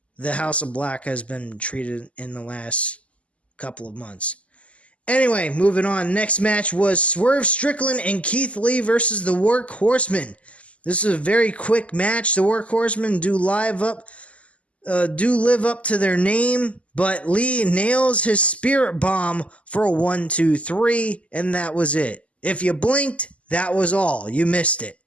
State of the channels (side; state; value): right; late; 0.063 ms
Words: the House of Black has been treated in the last couple of months. Anyway, moving on. Next match was Swerve Strickland and Keith Lee versus the Workhorsemen. This is a very quick match. The Workhorsemen do live up live up to their name, but Lee nails his spirit bomb for a 1-2-3, and that was it. If you blinked, that was all. You missed it.